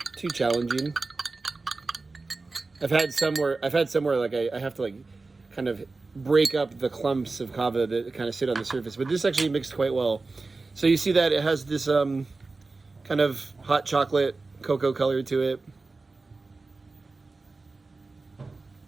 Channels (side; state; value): left; quieter; 3.7 dB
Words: too challenging. I've had somewhere like I have to like kind of break up the clumps of kava that kind of sit on the surface, but this actually mixed quite well. So you see that it has this kind of hot chocolate cocoa color to it.